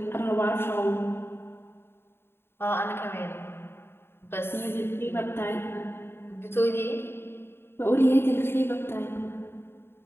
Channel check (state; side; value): late; right; 0.11 ms